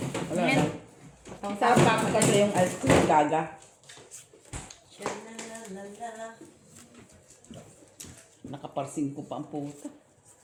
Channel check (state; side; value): identical; both; correlation 1.00